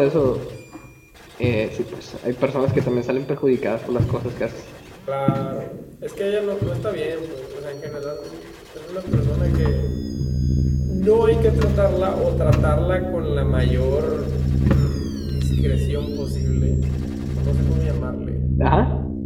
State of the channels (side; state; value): both; identical; correlation 1.00